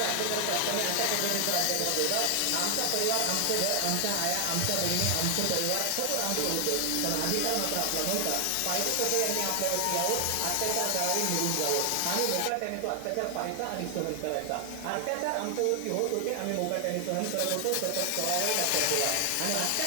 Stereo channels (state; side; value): different; both; correlation 0.00